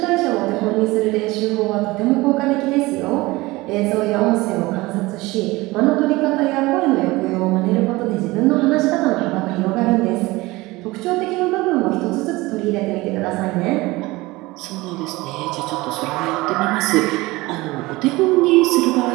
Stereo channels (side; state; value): left; quieter; 20.9 dB